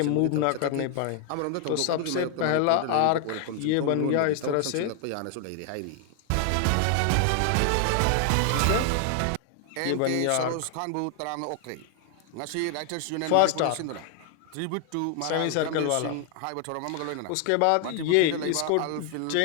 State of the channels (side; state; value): both; different; correlation 0.00